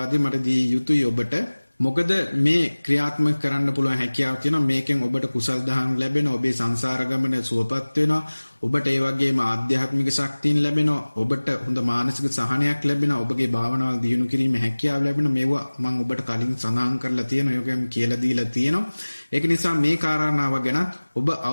මට දී යුතුයි ඔබට. මොකද මේ ක්‍රියාත්මක කරන්න පුළුවන් හැකියාව තියෙනවා. මේකෙන් ඔබට කුසල් දහම් ලැබෙනවා. ඔබේ සංසාර ගමන සුවපත් වෙනවා. ඔබට ඒ වගේම ආධ්‍යාත්මික ශක්තියන් ලැබෙනවා. ඔබට හොඳ මානසික සහනයක් ලැබෙනවා. ඔබගේ භාවනාවල් දියුණු කිරීමේ හැකියාව ලැබෙනවා. මේවා මම ඔබට කලින් සඳහන් කරලා තියෙනවා. ඒකම කියලා දීලා තියෙනවා. ඒක නිසා මේ කාරණාව ගැන ඔබ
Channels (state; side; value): inverted; both; correlation -1.00